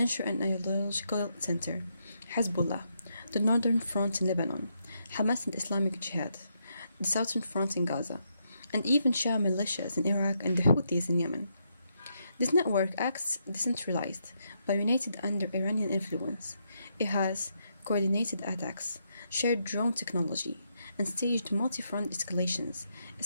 and ideological center, Hezbollah, the northern front in Lebanon, Hamas and Islamic Jihad, the southern front in Gaza, and even Shia militias in Iraq and the Houthis in Yemen. This network acts decentralized, but united under Iranian influence. It has coordinated attacks, shared drone technology, and staged multi-front escalations,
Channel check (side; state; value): both; inverted; correlation -0.79